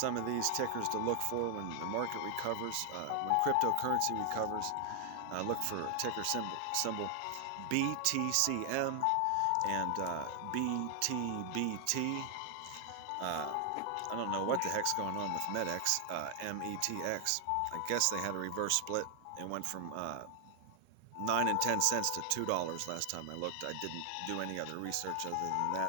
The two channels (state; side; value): different; both; correlation 0.00